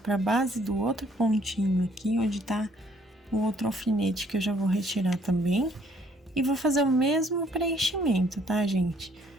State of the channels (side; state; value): both; normal; correlation 0.63